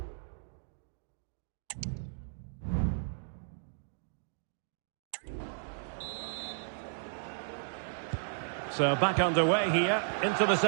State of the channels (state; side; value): silent; left; digital silence